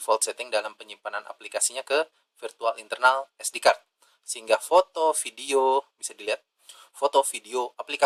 setting dalam penyimpanan aplikasinya ke virtual internal SD card. Sehingga foto, video, bisa dilihat, foto, video,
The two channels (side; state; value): both; identical; correlation 1.00